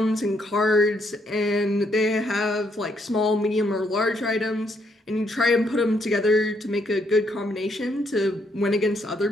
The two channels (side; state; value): both; normal; correlation 0.73